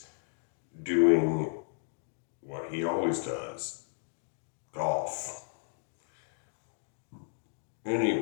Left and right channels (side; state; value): right; silent; digital silence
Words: doing what he always does, golf.